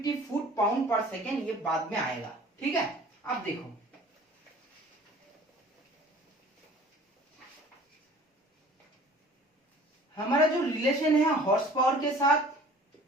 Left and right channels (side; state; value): both; normal; correlation 0.48